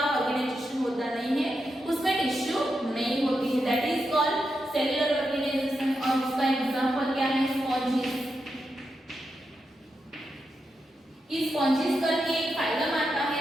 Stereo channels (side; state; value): both; normal; correlation 0.86